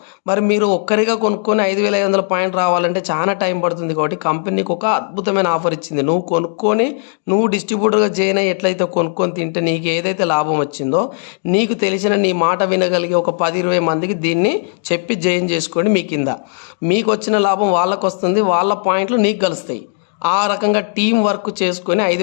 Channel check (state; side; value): silent; right; 56 dB below the other